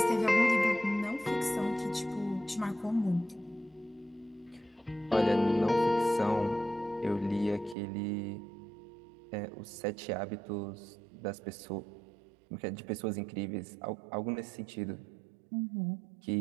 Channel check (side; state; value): left; drops out; at 7.8 s